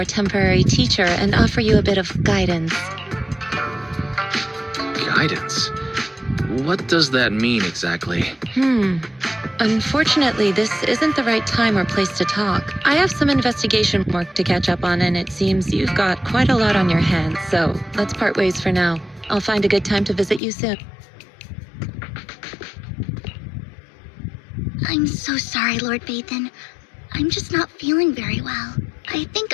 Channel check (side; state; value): right; drops out; at 20.4 s